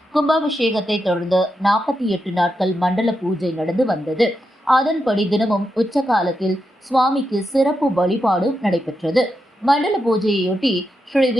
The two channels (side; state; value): both; normal; correlation 0.86